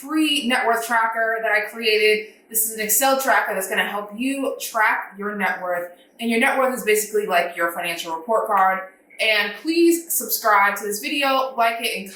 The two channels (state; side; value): identical; both; correlation 1.00